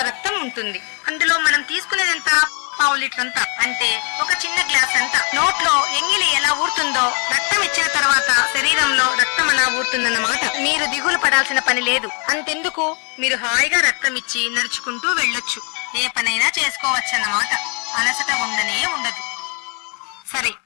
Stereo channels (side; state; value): right; quieter; 34.2 dB